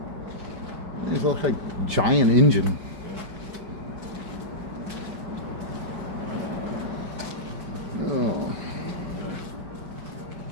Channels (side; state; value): left; late; 5.0 ms